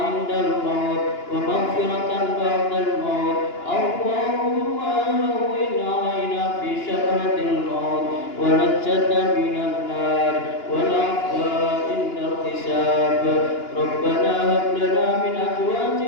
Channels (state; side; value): late; right; 2.9 ms